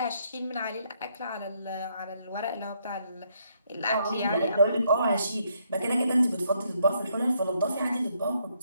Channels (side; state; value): both; inverted; correlation -0.73